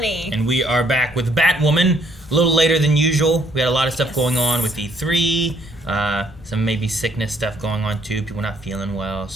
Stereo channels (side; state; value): both; normal; correlation 0.67